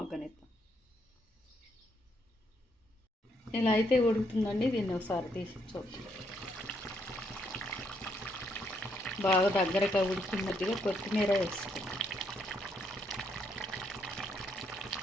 ఇలా అయితే ఉడుకుతుందండి. దీన్ని ఒకసారి తీసి చూద్దాం. బాగా దగ్గరగా ఉడికినట్టుగా కొత్తిమీర వేసుకుందాం.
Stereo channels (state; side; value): normal; both; correlation 0.74